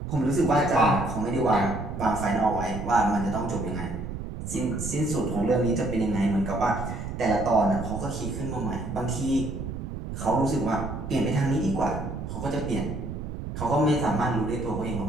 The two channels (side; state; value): right; noise; rumble, 7 dB below the sound